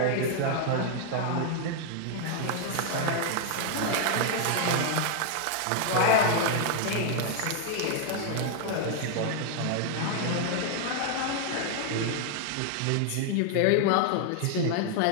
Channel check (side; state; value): both; different; correlation 0.00